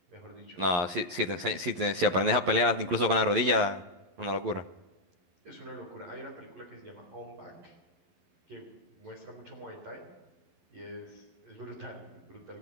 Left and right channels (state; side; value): late; left; 11 ms